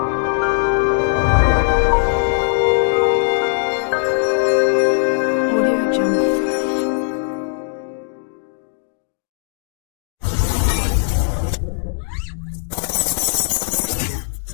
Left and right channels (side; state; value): right; silent; digital silence